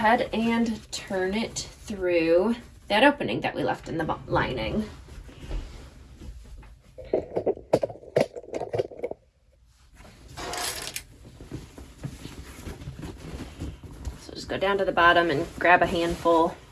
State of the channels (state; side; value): identical; both; correlation 1.00